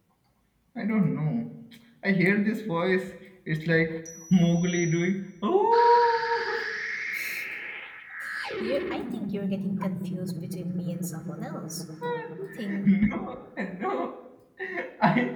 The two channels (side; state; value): both; identical; correlation 1.00